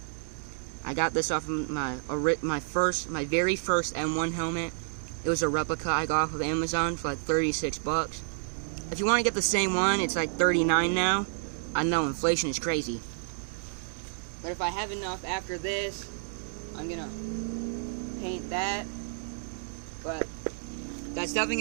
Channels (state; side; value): silent; left; 58 dB below the other